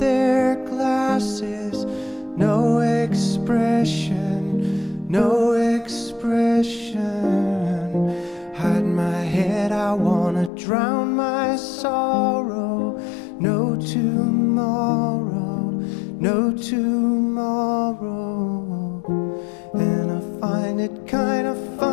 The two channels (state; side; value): drops out; right; at 10.5 s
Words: glasses, no expression, no expression. Hide my head, I wanna drown my sorrow. No tomorrow, no tomorrow. And I find it kinda